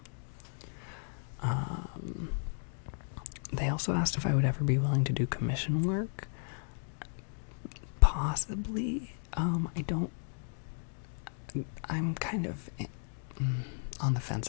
they also asked if I would ever be willing to do commission work. Possibly. I'm kind of on the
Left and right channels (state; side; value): silent; right; 55 dB below the other